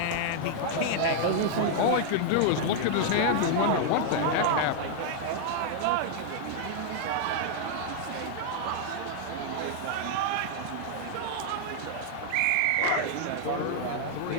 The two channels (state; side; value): different; both; correlation 0.00